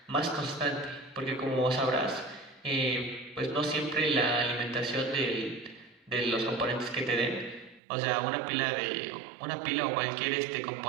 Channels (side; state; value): left; drops out; at 7.8 s